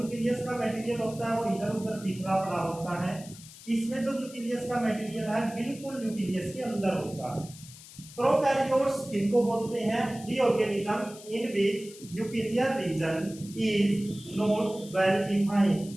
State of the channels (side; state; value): left; noise; hiss, 18 dB below the sound